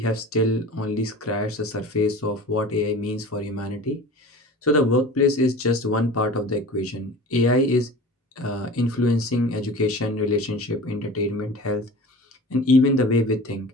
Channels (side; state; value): both; normal; correlation 0.38